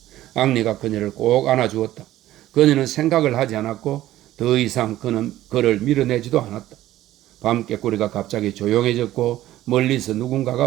앙리가 그녀를 꼭 안아주었다. 그녀는 생각을 하지 않았고 더 이상 그를 밀어내지도 않았다. 밤깨꼬리가 갑자기 조용해졌고 멀리서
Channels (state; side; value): quieter; left; 14.4 dB